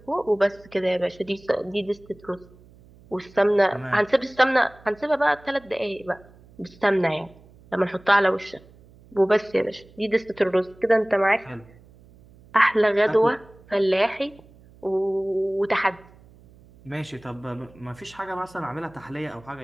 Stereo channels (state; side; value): noise; right; hum, 25 dB below the sound